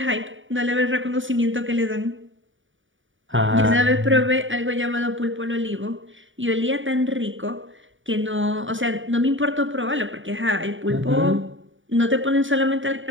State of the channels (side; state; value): left; late; 0.56 ms